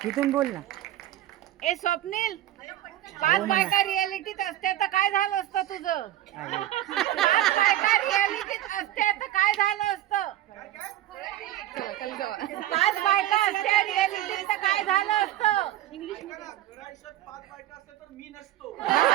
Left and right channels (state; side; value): quieter; left; 13.8 dB